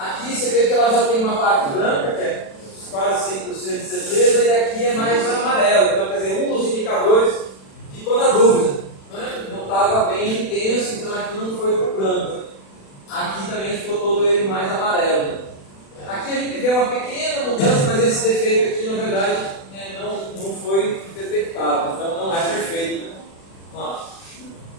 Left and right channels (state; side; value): late; right; 36 ms